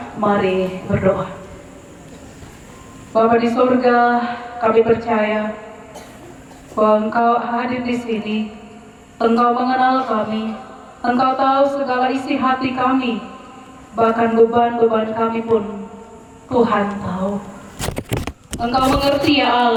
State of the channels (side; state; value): both; identical; correlation 1.00